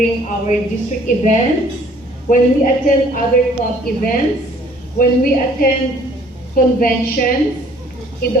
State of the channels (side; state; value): both; normal; correlation 0.57